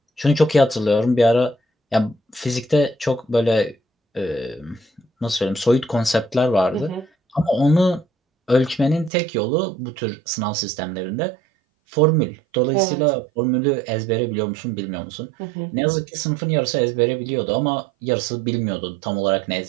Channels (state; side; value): drops out; left; at 9.1 s